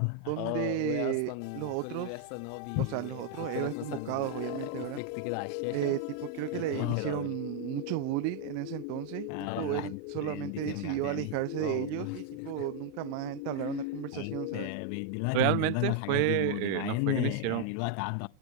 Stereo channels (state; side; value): different; both; correlation 0.00